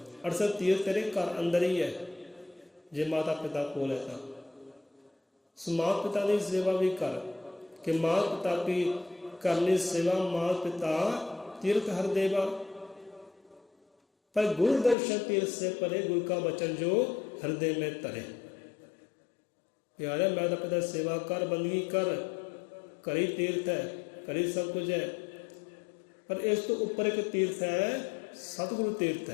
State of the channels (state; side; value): drops out; right; at 15.0 s